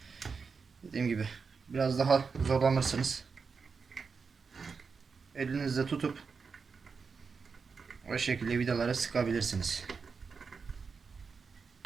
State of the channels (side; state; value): left; quieter; 5.2 dB